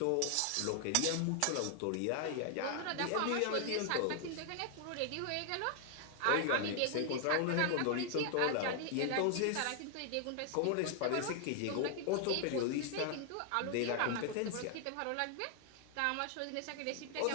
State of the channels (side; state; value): both; different; correlation 0.00